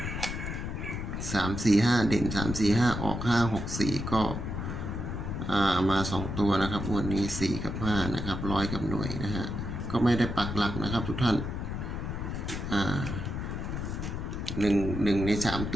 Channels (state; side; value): noise; left; rumble, 4 dB below the sound